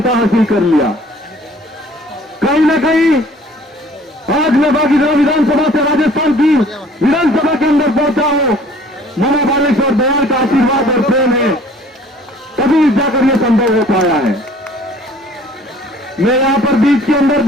हासिल कर लिया। कहीं न कहीं आज मैं बागीपुरा विधानसभा से राजस्थान की विधानसभा के अंदर पहुंचा हूं, मामा बालेश्वर दयाल का आशीर्वाद और प्रेम है, तभी जाकर यह संभव हो पाया है। मैं यहां पर बीच के अंदर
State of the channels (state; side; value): normal; both; correlation 0.53